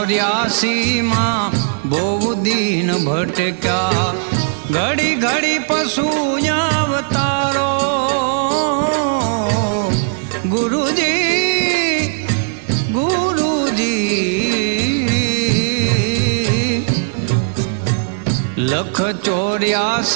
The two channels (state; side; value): silent; left; 68 dB below the other